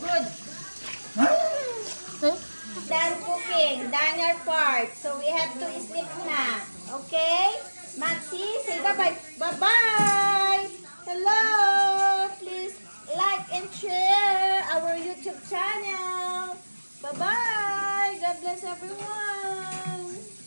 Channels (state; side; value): inverted; both; correlation -1.00